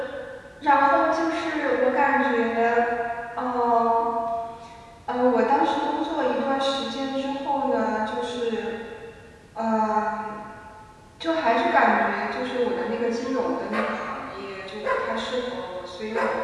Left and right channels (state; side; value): identical; both; correlation 1.00